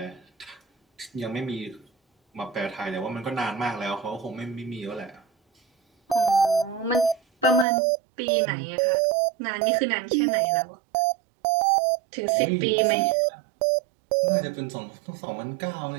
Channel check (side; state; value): left; drops out; at 7.7 s